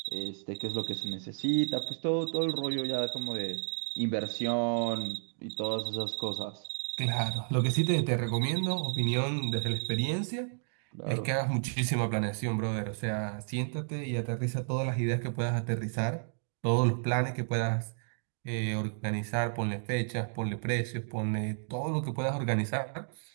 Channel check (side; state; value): left; silent; digital silence